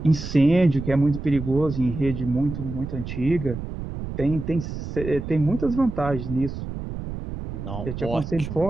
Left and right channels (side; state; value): right; noise; rumble, 7 dB below the sound